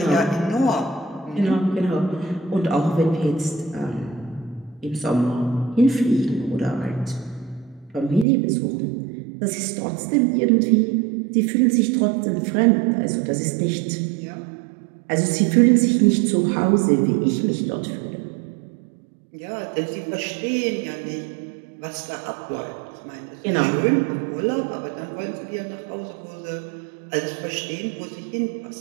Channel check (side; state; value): left; drops out; at 8.2 s